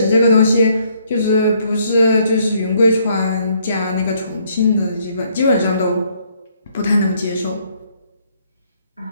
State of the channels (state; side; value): inverted; both; correlation -0.68